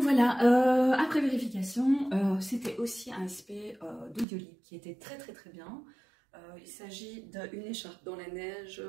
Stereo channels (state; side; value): drops out; left; at 4.2 s